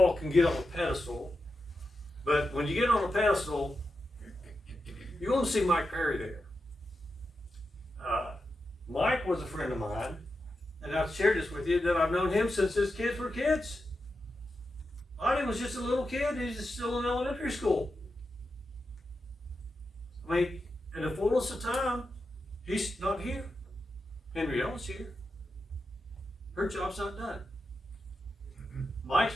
can get on a pedestal, but when you get on a pedestal, you're going to see Mike Perry there. Mike was a friend of mine, and I've shared this with you, that I've known him since his kids were kids. Lonnie was just a little kid. He's still in elementary school. I mean, in the fullness of time, he's not here. Henrietta's here. Her job's not done.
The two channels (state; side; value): normal; both; correlation 0.88